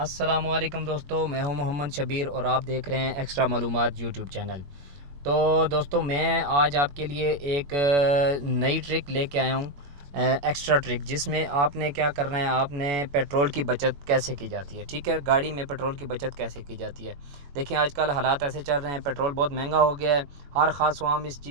दोस्तों, मैं हूं मोहम्मद शबीर और आप देख रहे हैं एक्स्ट्रा मालूमात यूट्यूब चैनल। तो दोस्तों, मैं आज आपके लिए एक नई ट्रिक लेके आया हूं, एक्स्ट्रा ट्रिक, जिसमें आपने क्या करना है, आपने पेट्रोल की बचत कैसे की जाती है। ठीक है, गाड़ी में पेट्रोल की बचत कैसे की जाती है। देखिए, आजकल हालात ऐसे चल रहे हैं, पेट्रोल बहुत महंगा हो गया है। हर ख़ास आवाम इस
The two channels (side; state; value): left; late; 21 ms